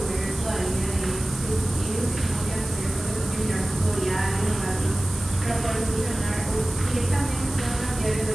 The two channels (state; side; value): noise; right; hiss, 13 dB below the sound